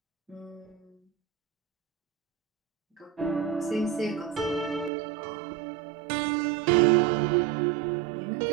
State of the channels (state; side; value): drops out; left; at 4.9 s